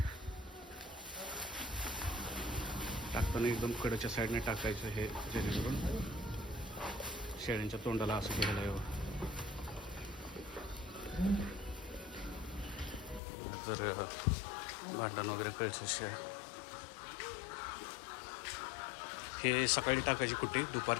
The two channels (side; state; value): right; drops out; at 13.2 s